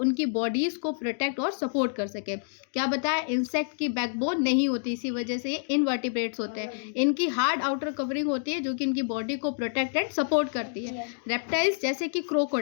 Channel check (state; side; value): silent; right; digital silence